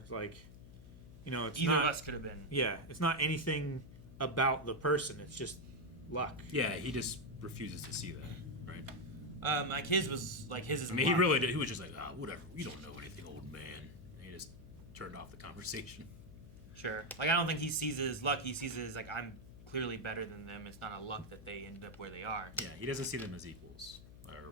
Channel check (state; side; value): noise; left; hum, 17 dB below the sound